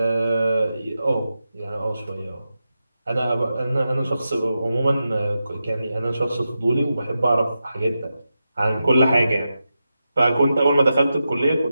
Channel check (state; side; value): inverted; both; correlation -0.90